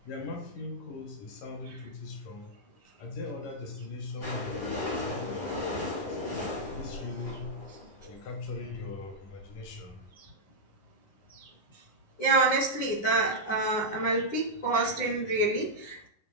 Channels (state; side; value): late; right; 9.8 ms